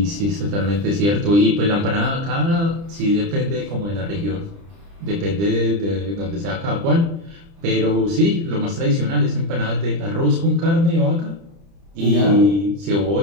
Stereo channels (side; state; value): left; late; 30 ms